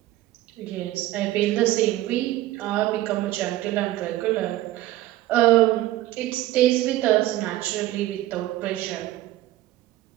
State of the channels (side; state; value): left; quieter; 15.5 dB